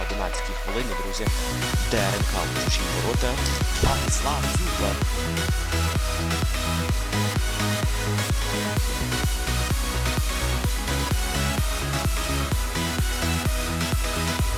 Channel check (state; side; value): identical; both; correlation 1.00